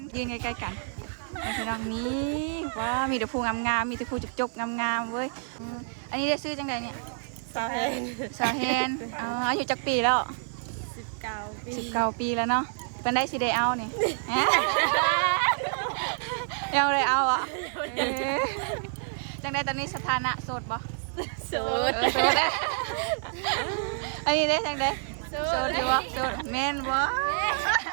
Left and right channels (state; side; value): silent; left; 59 dB below the other